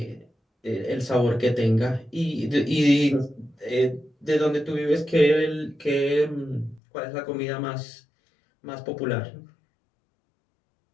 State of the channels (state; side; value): drops out; right; at 6.8 s